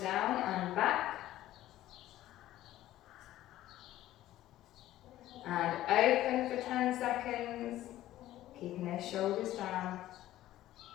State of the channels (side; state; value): right; quieter; 14.3 dB